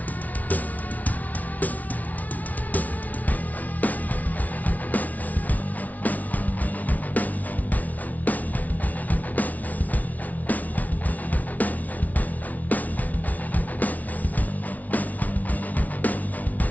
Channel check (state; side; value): late; right; 0.073 ms